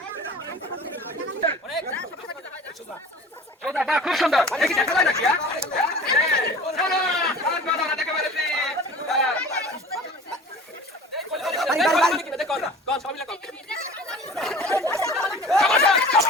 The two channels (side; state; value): both; normal; correlation 0.42